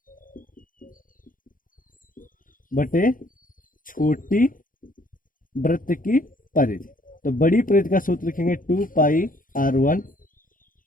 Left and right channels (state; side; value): late; right; 0.40 ms